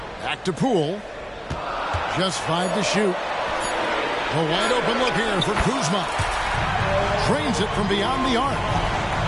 Back to Poole. Just 5 to shoot. A wide open look here for Kuzma. Trains it from beyond the arc.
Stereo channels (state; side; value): identical; both; correlation 1.00